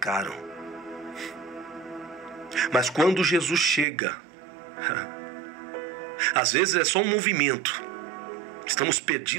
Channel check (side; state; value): left; drops out; at 3.9 s